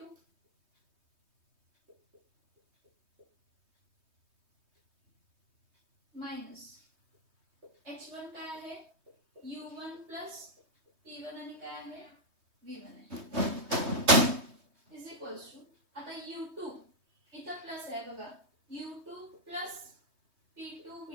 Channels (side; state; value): left; late; 3.2 ms